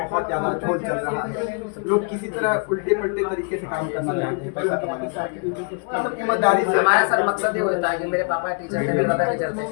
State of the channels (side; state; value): right; quieter; 38.7 dB